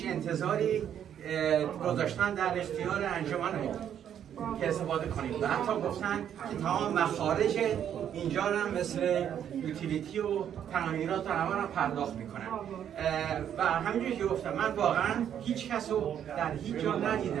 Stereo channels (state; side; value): quieter; left; 9.5 dB